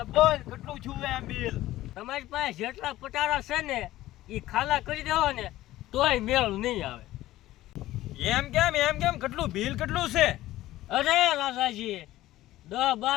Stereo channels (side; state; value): right; quieter; 15.6 dB